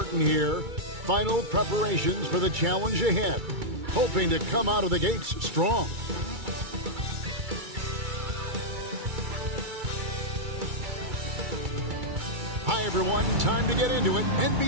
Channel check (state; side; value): late; left; 2.3 ms